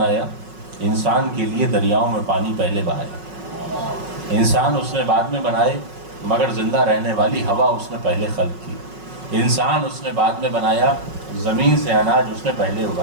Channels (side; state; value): left; late; 5.4 ms